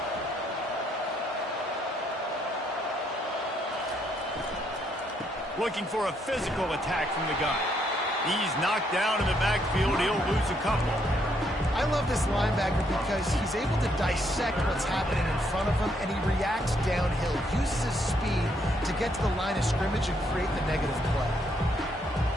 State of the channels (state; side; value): normal; both; correlation 0.73